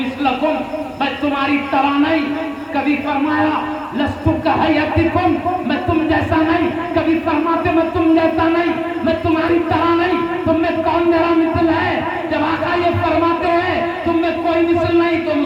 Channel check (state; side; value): identical; both; correlation 1.00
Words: میں تمہاری طرح نہیں، کبھی فرمایا لست کہیتکم، میں تم جیسا نہیں، کبھی فرماتے میں تم جیسا نہیں، میں تمہاری طرح نہیں، تم میں کون میرا مثل ہے؟ جب آقا یہ فرماتے ہیں تم میں کوئی مثل نہیں، تو